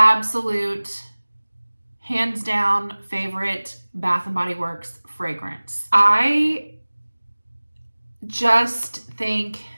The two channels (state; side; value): inverted; both; correlation -1.00